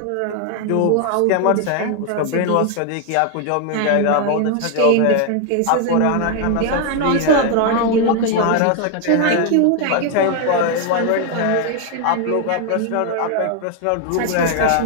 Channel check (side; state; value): both; different; correlation 0.01